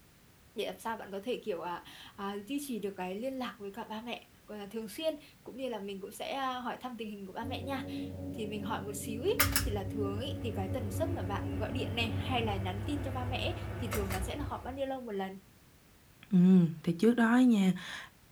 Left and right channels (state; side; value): identical; both; correlation 1.00